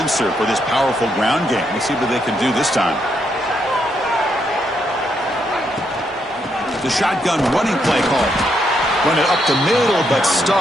for this powerful ground game. Let's see what they can do this time. The shotgun running play call. Run it up the middle, but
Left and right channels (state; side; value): normal; both; correlation 0.78